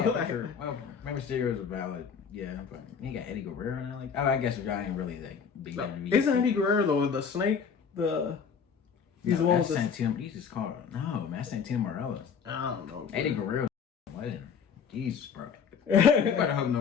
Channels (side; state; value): right; quieter; 6.6 dB